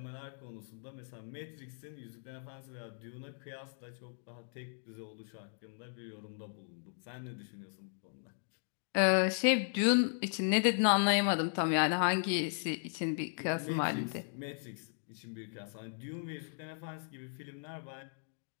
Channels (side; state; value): right; silent; digital silence